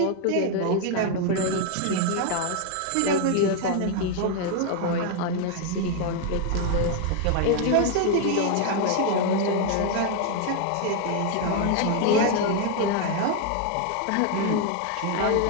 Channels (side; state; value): both; different; correlation 0.01